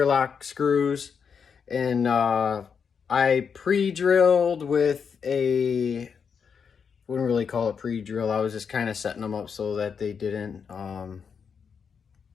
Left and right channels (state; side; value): quieter; right; 6.4 dB